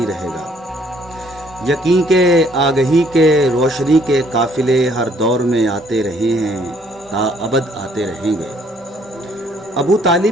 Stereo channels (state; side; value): normal; both; correlation 0.64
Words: رہے گا۔ یقین کے آگہی کے روشنی کے قافلے ہر دور میں آتے رہے ہیں، تا ابد آتے رہیں گے۔ ابو